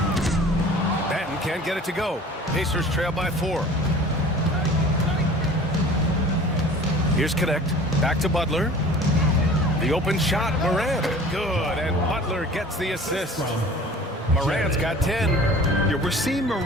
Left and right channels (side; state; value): both; normal; correlation 0.44